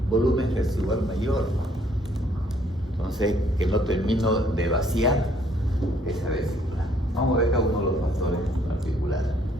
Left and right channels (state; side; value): normal; both; correlation 0.65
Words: volumen residual mayor, entonces que no termino de vaciar esa vesícula. Vamos a ver cada uno de los factores particulares.